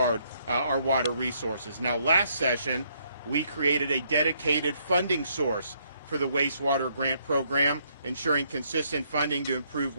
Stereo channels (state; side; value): inverted; both; correlation -0.71